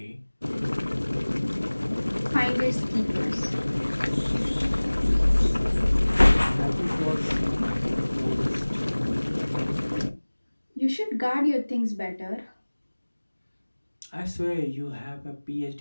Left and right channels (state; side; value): inverted; both; correlation -1.00